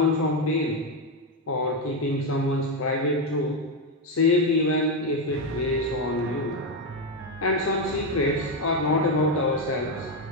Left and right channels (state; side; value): normal; both; correlation 0.07